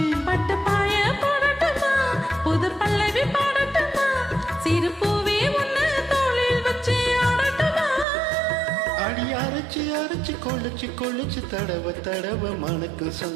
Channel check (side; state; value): left; drops out; at 8.1 s